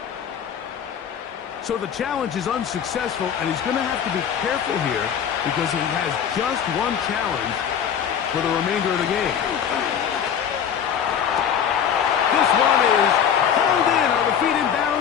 So the challenge is unsuccessful, and he's going to have to be careful here because he has just one challenge for the remainder of the game. This one is hauled in. Are the feet in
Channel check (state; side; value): quieter; right; 8.3 dB